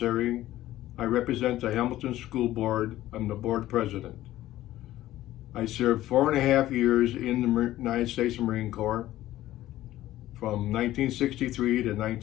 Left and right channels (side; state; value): right; quieter; 14.7 dB